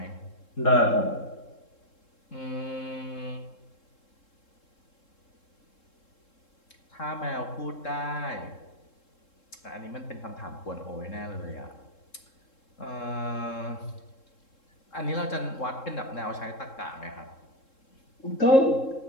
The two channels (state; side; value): late; right; 3.7 ms